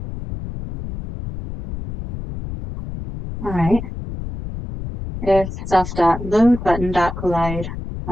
All right. If self.loadButton.collide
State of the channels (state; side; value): noise; left; rumble, 8 dB below the sound